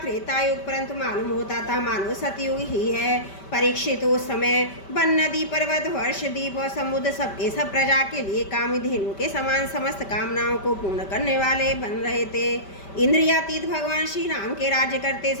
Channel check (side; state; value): right; late; 5.1 ms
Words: त्रेता युग, परंतु मालूम होता था मानो सतयुग ही है। परीक्षित उस समय वन, नदी, पर्वत, वर्ष, द्वीप और समुद्र सबके सब प्रजा के लिए कामधेनु के समान समस्त कामनाओं को पूर्ण करने वाले बन रहे थे। इंद्रियातीत भगवान श्री राम के राज्य करते